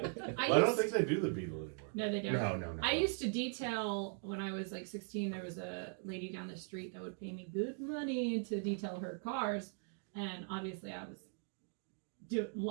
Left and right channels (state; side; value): silent; left; 51 dB below the other